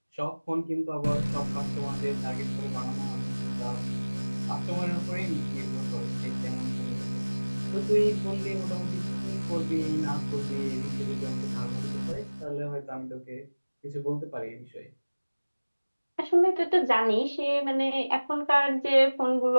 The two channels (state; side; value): inverted; both; correlation -1.00